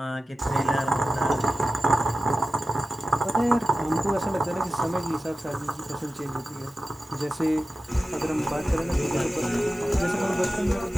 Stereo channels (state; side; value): normal; both; correlation 0.92